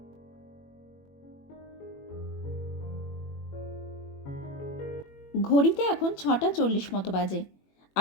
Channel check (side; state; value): right; late; 21 ms